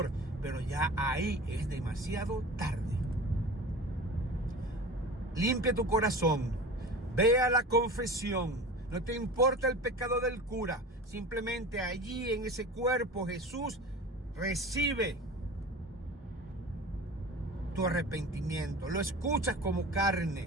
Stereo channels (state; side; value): normal; both; correlation 0.36